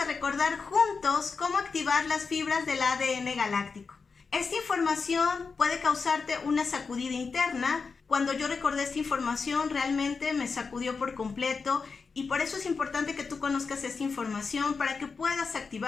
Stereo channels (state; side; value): quieter; right; 4.9 dB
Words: recordar juntos cómo activar las fibras del ADN galáctico. Esta información puede causarte una sacudida interna. Cuando yo recordé esta información realmente me sacudió por completo y por eso es importante que tú conozcas esta información para que puedas